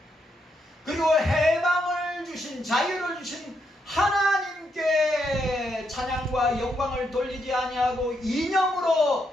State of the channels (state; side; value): normal; both; correlation 0.79